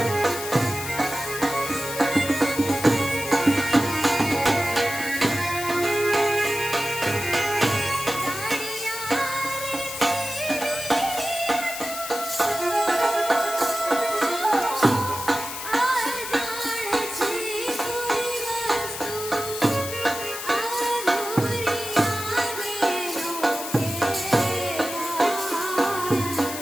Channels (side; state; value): left; noise; hiss, 8 dB below the sound